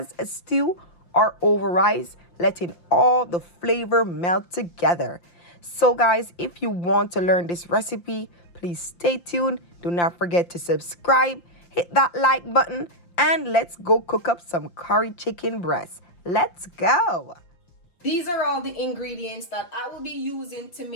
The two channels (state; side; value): late; right; 5.8 ms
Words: a stew or over rice, letting all the flavor melt together. So, guys, if you want to learn this recipe, please stay tuned. Do not forget to subscribe, hit that like button, and let's go cook up some curry chicken breast. Let's go. These are all the ingredients that I will be using to